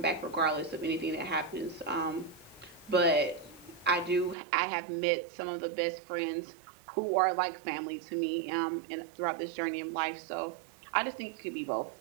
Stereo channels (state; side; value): drops out; left; at 4.4 s